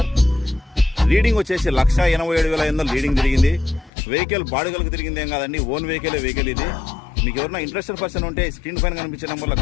రీడింగ్ వచ్చేసి 1,87,500 రీడింగ్ తిరిగింది. వెహికల్ బాడుగలకు తిరిగింది ఏం కాదండి, ఓన్ వెహికల్ ఇది. మీకు ఎవరైనా ఇంట్రెస్టెడ్ పర్సన్ ఉంటే స్క్రీన్ పైన కనిపించే నెంబర్లో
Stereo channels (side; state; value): right; drops out; at 3.9 s